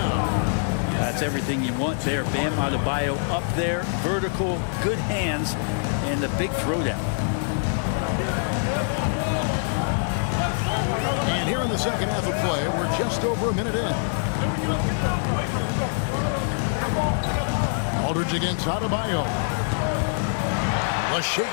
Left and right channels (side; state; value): right; silent; digital silence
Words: That's everything you want there. Bam Adebayo up there, vertical, good hands, and the big throwdown. And here in the second half of play, we're just over a minute in. Aldridge against Adebayo. The shape.